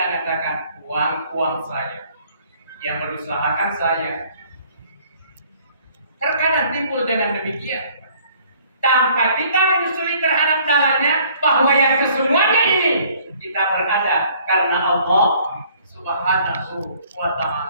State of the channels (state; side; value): inverted; both; correlation -0.58